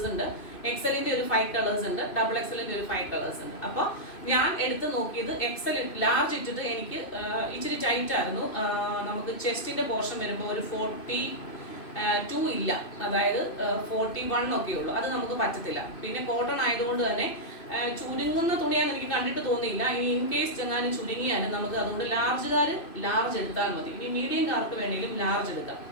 ഉണ്ട്, എക്സലിന്റെ ഒരു 5 കളേഴ്സ് ഉണ്ട്, ഡബിൾ എക്സലിന്റെ ഒരു 5 കളേഴ്സ് ഉണ്ട്. അപ്പോൾ ഞാൻ എടുത്ത് നോക്കിയത് എക്സൽ ലാർജ് ഇട്ടിട്ട് എനിക്ക് ഇച്ചിരി ടൈറ്റ് ആയിരുന്നു. നമുക്ക് ചെസ്റ്റിന്റെ പോർഷൻ വരുമ്പോൾ ഒരു 42 ഇല്ല, അതായത് 41 ഒക്കെ ഉള്ളൂ. അത് നമുക്ക് പറ്റത്തില്ല. പിന്നെ കോട്ടൺ ആയതുകൊണ്ട് തന്നെ ചുരുങ്ങുന്ന തുണിയാന്ന് എനിക്ക് കണ്ടിട്ട് തോന്നിയില്ല. ഇനി ഇൻ കേസ് ചെങ്ങാനും ചുരുങ്ങിയാലും നമുക്ക് അതുകൊണ്ട് ലാർജ് എടുത്താൽ മതി. ഇനി മീഡിയംകാർക്ക് വേണമെങ്കിലും ലാർജ് എടുക്കാം.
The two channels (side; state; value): right; late; 2.5 ms